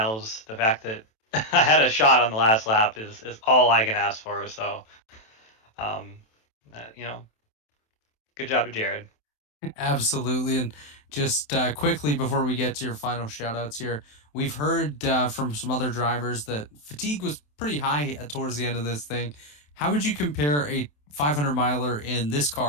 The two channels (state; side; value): late; right; 27 ms